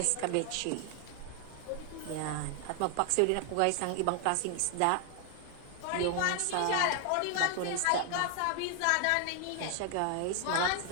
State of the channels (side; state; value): both; different; correlation 0.00